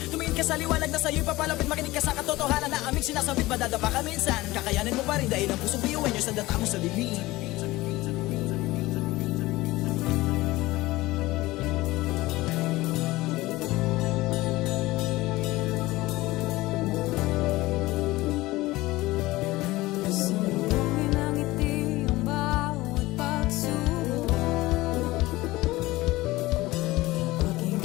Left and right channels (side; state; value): right; quieter; 19.1 dB